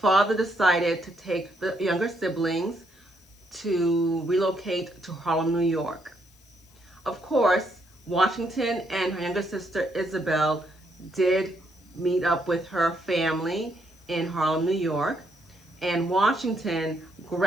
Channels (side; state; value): left; noise; hiss, 29 dB below the sound